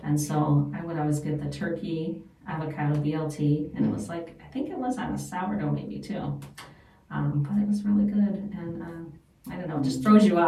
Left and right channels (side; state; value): both; identical; correlation 1.00